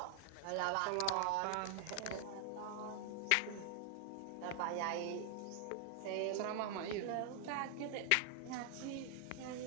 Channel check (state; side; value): different; both; correlation 0.00